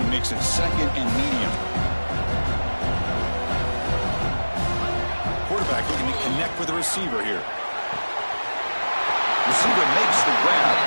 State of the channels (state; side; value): inverted; both; correlation -1.00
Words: makes it second and medium. Quarterback looking to connect with the receiver here. Receiver makes the grab.